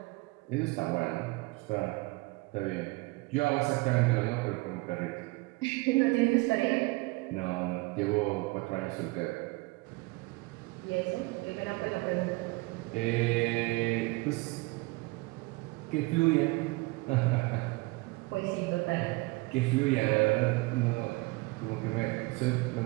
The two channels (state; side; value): quieter; left; 24.1 dB